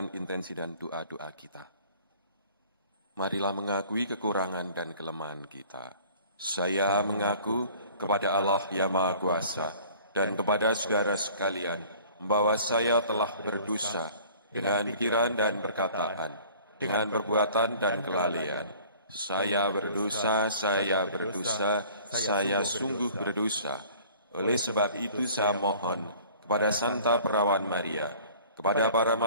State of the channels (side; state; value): both; inverted; correlation -0.50